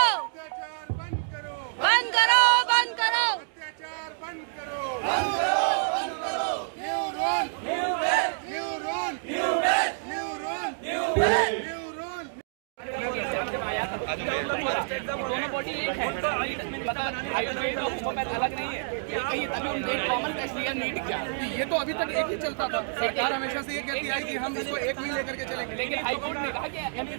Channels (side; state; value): left; silent; digital silence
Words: अत्याचार बंद करो, बंद करो, बंद करो, अत्याचार बंद करो, बंद करो, बंद करो। New rule, new base, new rule, new base, new rule, new base, new rule. दोनों बॉडी एक है, आयुर्वेद और होम्योपैथ अलग नहीं है। कहीं तभी उनसे एक कॉमन टेस्ट लिया नीट क्या, ये तो अभी तक एक ही चलता था। सरकार हमेशा से ये कहती आई कि हम इसको एक में लेकर के चलेंगे, लेकिन हाईकोर्ट ने कहा कि